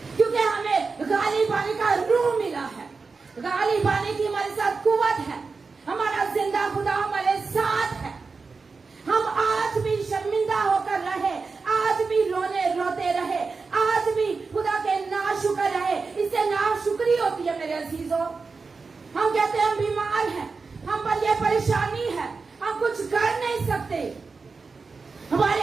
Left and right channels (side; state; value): left; quieter; 4.5 dB